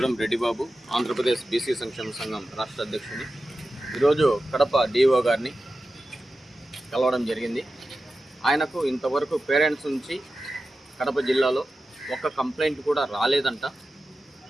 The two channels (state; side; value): normal; both; correlation 0.93